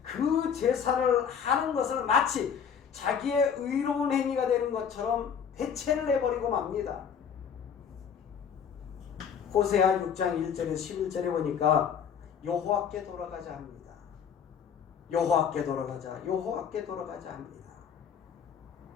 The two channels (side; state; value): right; quieter; 7.4 dB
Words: 그 제사를 하는 것을 마치 자기의 의로운 행위가 되는 것처럼 대체를 해버리고 맙니다. 호세아 6장 1절에서 11절에 보니까 여호와께 돌아가자 합니다. 여호와께 돌아가자, 여호와께 돌아가자 합니다.